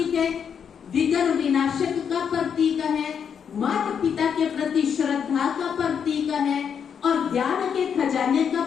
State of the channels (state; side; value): quieter; right; 7.4 dB